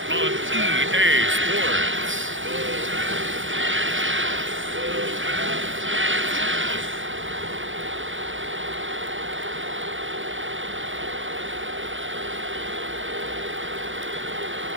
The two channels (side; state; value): left; late; 0.56 ms